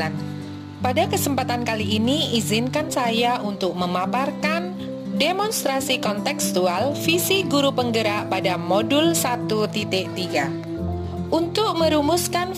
Pada kesempatan kali ini, izinkan saya untuk memaparkan demonstrasi kontekstual visi guru penggerak pada modul 1.3. Untuk merumuskan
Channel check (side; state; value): both; identical; correlation 1.00